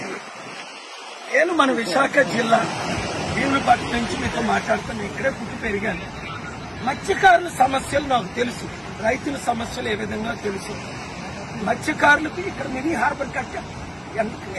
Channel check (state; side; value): identical; both; correlation 1.00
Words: నేను మన విశాఖ జిల్లా భీములపట్నం నుంచి మీతో మాట్లాడుతాను. ఇక్కడే పుట్టి పెరిగాను. మత్స్యకారుల సమస్యలు నాకు తెలుసు, రైతుల సమస్యలు ఏ విధంగా తెలుసు. మత్స్యకారులకు ఇక్కడ మినీ హార్బర్ కట్టారు.